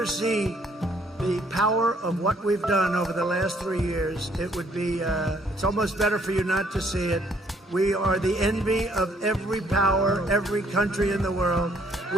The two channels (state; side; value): normal; both; correlation 0.65